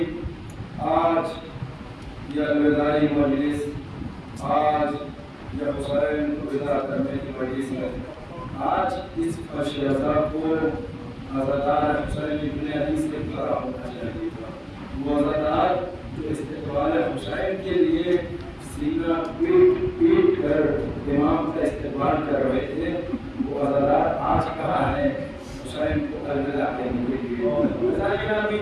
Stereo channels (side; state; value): both; identical; correlation 1.00